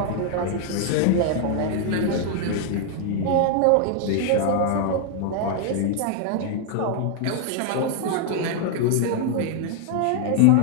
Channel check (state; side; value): different; both; correlation 0.00